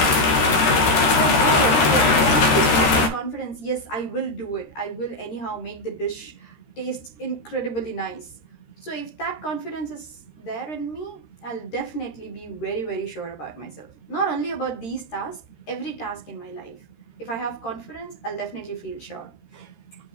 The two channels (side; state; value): right; late; 13 ms